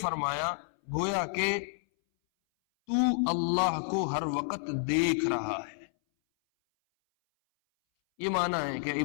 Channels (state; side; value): silent; right; 58 dB below the other